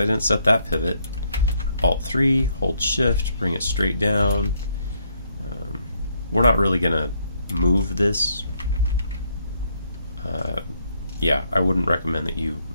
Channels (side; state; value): both; inverted; correlation -0.72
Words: didn't set that pivot. Alt 3, hold shift, bring it straight down. We're not really going to move this. Yeah, I wouldn't recommend that you